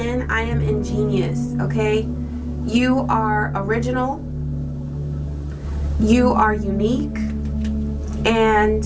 I am ingenious, okay? You are original, you are unique, and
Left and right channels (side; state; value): both; identical; correlation 1.00